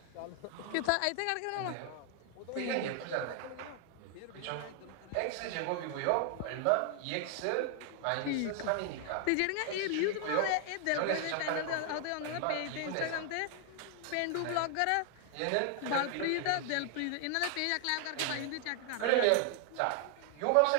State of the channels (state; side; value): different; both; correlation 0.00